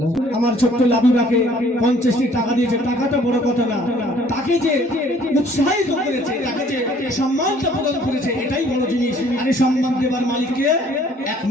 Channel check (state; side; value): normal; both; correlation 0.58